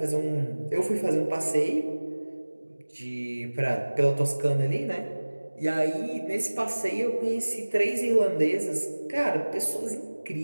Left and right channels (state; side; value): inverted; both; correlation -1.00